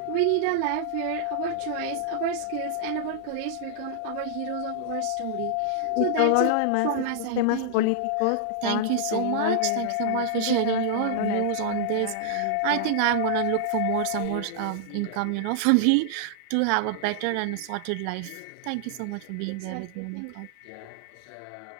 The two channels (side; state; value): both; different; correlation -0.01